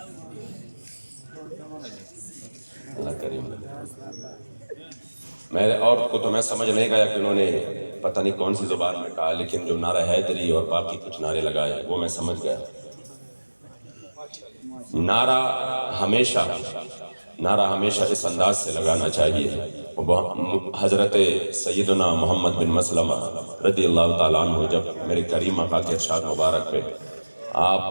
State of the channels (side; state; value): both; inverted; correlation -1.00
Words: اللہ کریم میرے اور کو تو میں سمجھ نہیں گیا کہ انہوں نے پتہ نہیں کون سی زبان میں کہا، لیکن جو نعرہ حیدری اور باقی کچھ نعرے لگائے وہ میں سمجھ گیا۔ نعرہ ہمیشہ اس انداز سے لگانا چاہیے۔ حضرت سیدنا محمد بن مسلمہ رضی اللہ تعالیٰ عنہ جب میرے کریم آقا کے ارشاد مبارک پہ